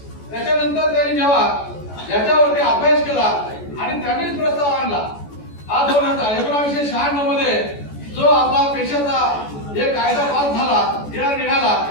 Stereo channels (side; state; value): right; late; 14 ms